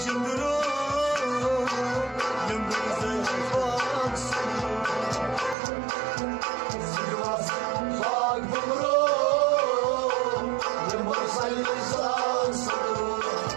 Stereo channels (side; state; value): left; drops out; at 5.6 s